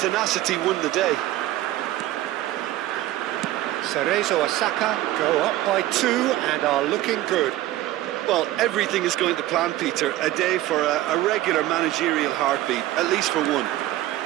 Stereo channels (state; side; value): quieter; left; 15.2 dB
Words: won the day. Cerezo Osaka go up by 2 and are looking good. Well, everything is going to plan, Peter. A day for a regular managerial heartbeat, at least for one.